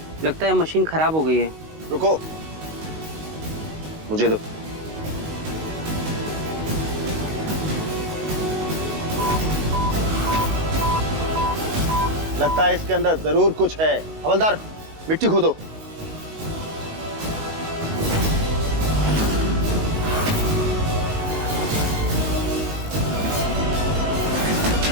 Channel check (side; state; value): left; late; 19 ms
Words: लगता है मशीन खराब हो गई है। रुको, मुझे दो। लगता है इसके अंदर जरूर कुछ है। हवलदार, मिट्टी खोदो।